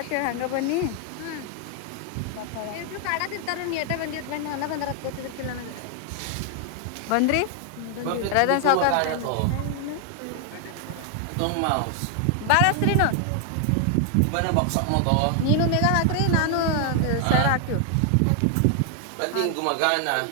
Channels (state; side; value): different; both; correlation 0.00